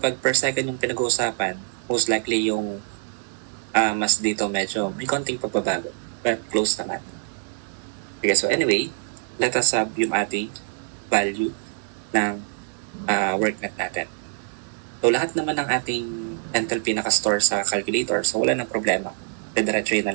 per second yung pinag-uusapan, most likely yung mas dito medyo may konting pagbabago. But close naman. Okay, so anyway, let us have yung ating value ng work net natin. So, lahat naman ng ating enthalpy nakastore sa calculator. So, wala nang problema. Didiretsuhin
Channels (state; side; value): silent; left; digital silence